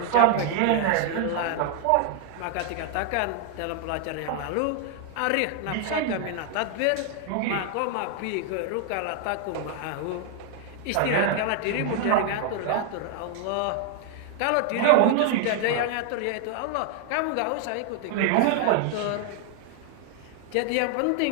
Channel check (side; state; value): both; different; correlation 0.00